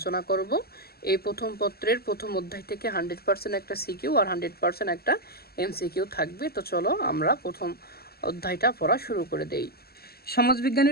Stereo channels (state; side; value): late; right; 0.45 ms